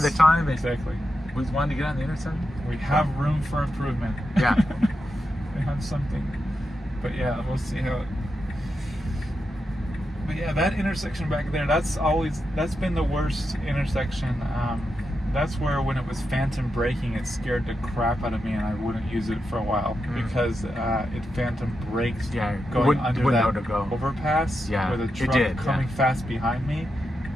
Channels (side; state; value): both; normal; correlation 0.87